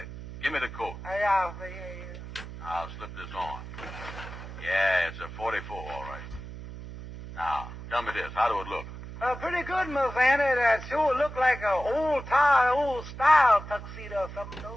Give me the coat. Yeah, sir, yeah. I'll slip this on. Yeah, it's a 44, all right. Now, tell me this. How do it look? Pretty good, Miss Andy. That sure look like an old-style tuxedo or something, though.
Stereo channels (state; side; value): noise; right; hum, 11 dB below the sound